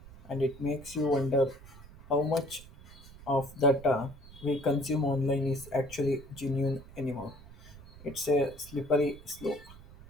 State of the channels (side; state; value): right; noise; rumble, 18 dB below the sound